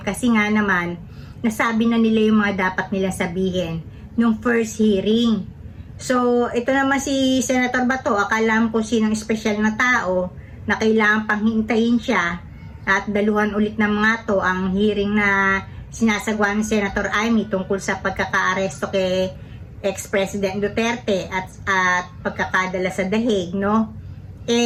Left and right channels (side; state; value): both; identical; correlation 1.00